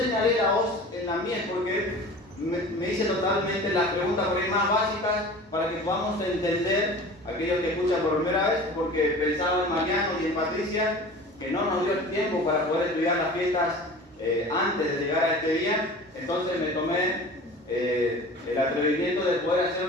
la hoz en la mies porque me hice totalmente las preguntas por ahí más básicas para que podamos entender, aquellos que escuchan por primera vez, porque pensaba en Mariano y en Patricia, que no nos dio el tiempo para poder estudiar las fiestas antes de llegar a este día. Entonces me tomé el atrevimiento de poder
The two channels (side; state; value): both; normal; correlation 0.39